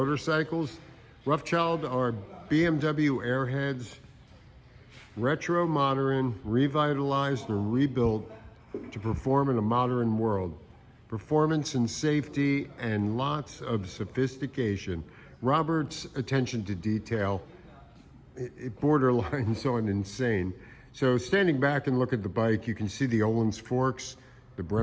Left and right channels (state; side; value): identical; both; correlation 1.00